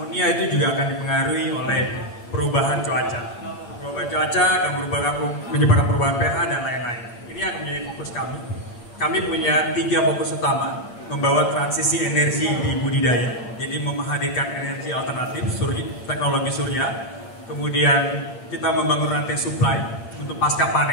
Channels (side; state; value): right; late; 8.7 ms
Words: itu juga akan dipengaruhi oleh perubahan cuaca. Perubahan cuaca akan menyebabkan perubahan pH dan lain-lain. Ini yang menjadi fokus kami. Kami punya 3 fokus utama: membawa transisi energi di budidaya, jadi menghadirkan energi alternatif, teknologi surya. Kemudian kita membangun rantai supply untuk pasca